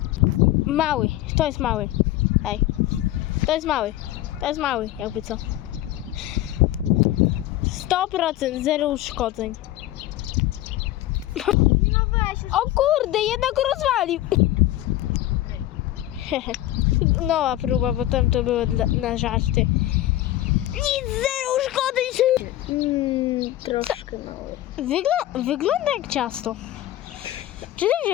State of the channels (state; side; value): quieter; right; 14.7 dB